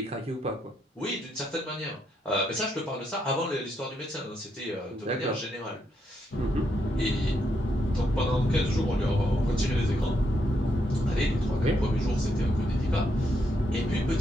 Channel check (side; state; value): both; normal; correlation 0.78